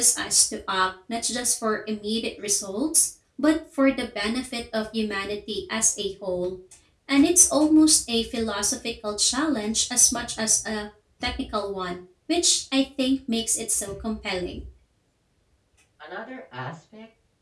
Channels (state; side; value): identical; both; correlation 1.00